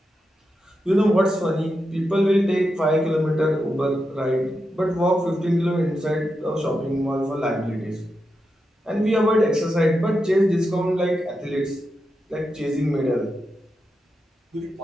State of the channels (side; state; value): both; normal; correlation 0.87